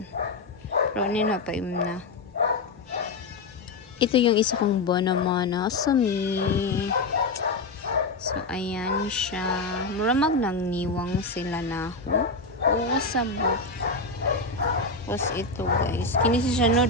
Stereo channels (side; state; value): right; quieter; 3.5 dB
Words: Pero nino pa na. Ito yung isa kong Bonamana. Sumi. So, ayan siya. Muramag nang niwang sila na ho. Oo, sabot. Tapos ito guys. Kini siya no,